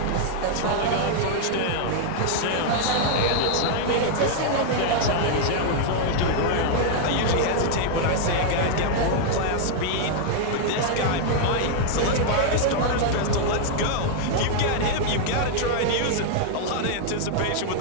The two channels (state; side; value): different; both; correlation -0.01